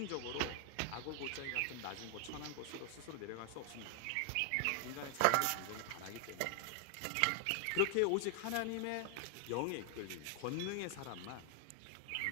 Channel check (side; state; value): both; different; correlation 0.00